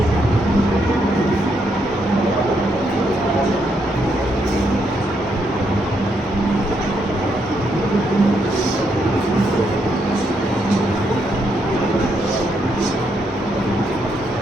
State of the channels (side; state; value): both; normal; correlation 0.77